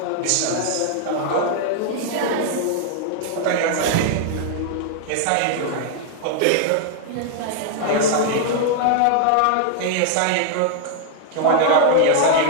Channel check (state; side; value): different; both; correlation -0.01